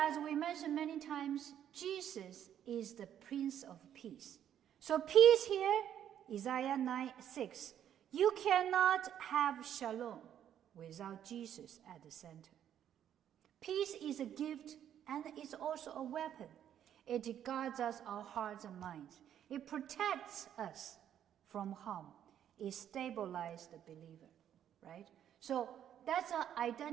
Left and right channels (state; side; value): quieter; left; 10.1 dB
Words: we mentioned many times, Jesus is the Prince of Peace. So peace here, Isaiah 9:6, you cannot have shalom without Jesus at the center. Peace is a gift and it's also a weapon. It guards us, our hearts and minds. It protects us from harm. It stabilizes the believer, right? So that's a